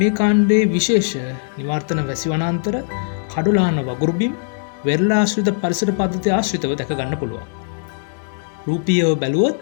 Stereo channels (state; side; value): silent; right; 66 dB below the other